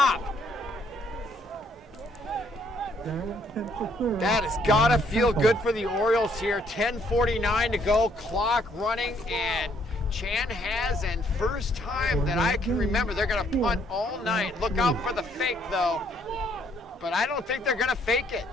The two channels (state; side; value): normal; both; correlation 0.68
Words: That has got to feel good for the Orioles here. 10:49 to go, clock running, and Chanhassen, first time that I can remember, they're going to punt all night. Look out for the fake, though. But I don't think they're going to fake it.